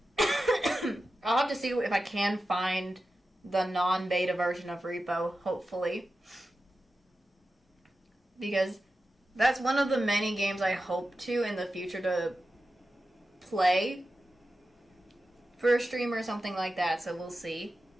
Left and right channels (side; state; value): both; normal; correlation 0.92